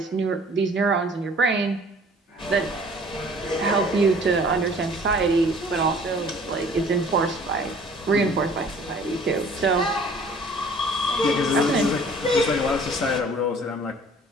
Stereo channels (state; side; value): normal; both; correlation 0.52